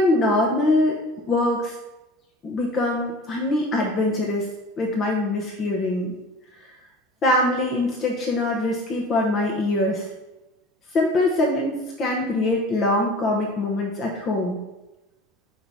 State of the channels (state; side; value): normal; both; correlation 0.42